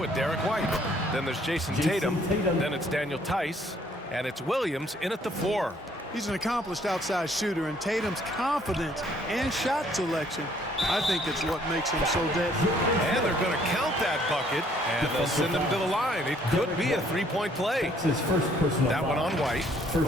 Derek White. Then there's Jason Tatum. Then it's Daniel Tice. And it's Williams in at the 4. He's an accomplished outside shooter, and Tatum's confidence and shot selection, I think it's what makes him so deadly. And they're going to count that bucket, and they'll send him to the line. It could be a three-point play. That one on White.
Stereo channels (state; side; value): normal; both; correlation 0.63